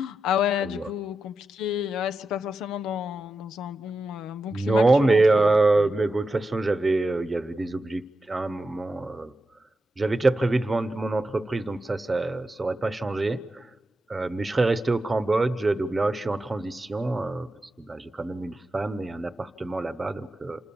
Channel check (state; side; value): normal; both; correlation 0.90